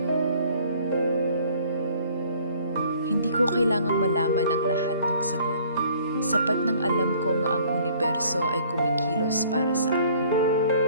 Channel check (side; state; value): both; inverted; correlation -0.56